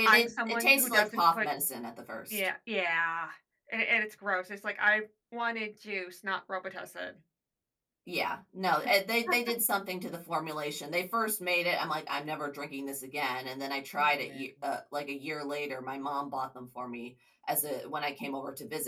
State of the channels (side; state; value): both; identical; correlation 1.00